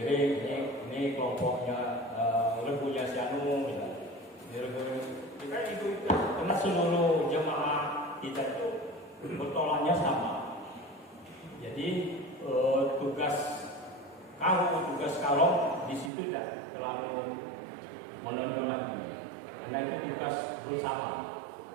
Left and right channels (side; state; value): left; drops out; at 16.1 s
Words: ini kelompoknya rebunya si Anu, kita itu karena seluruh jemaah kita itu bertolaknya sama. Jadi tugas kalong di situ tidak terlalu menonjol lagi, karena itu tugas bersama